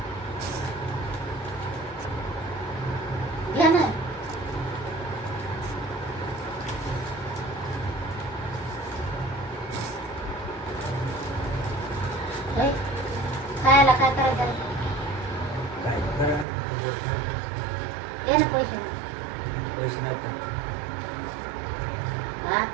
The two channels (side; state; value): left; drops out; at 16.4 s